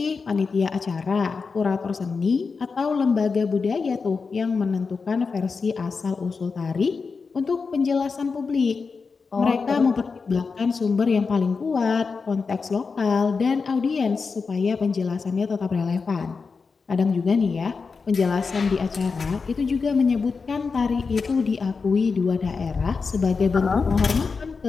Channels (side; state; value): right; quieter; 4.9 dB